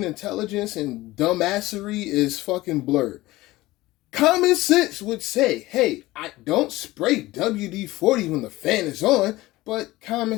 intelligence and dumbassery is fucking blurred. Common sense would say, hey, I don't spray WD-40 when the fan is on, but common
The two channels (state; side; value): quieter; right; 18.4 dB